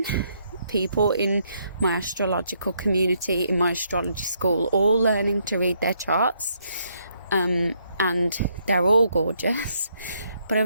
people in my astrological community, in my astrology school, all learning to read their charts. and they're all gorgeous. But I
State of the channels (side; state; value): both; inverted; correlation -0.73